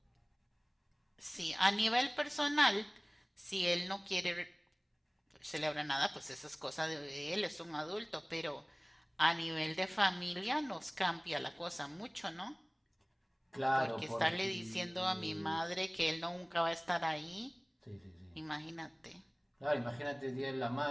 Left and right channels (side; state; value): both; identical; correlation 1.00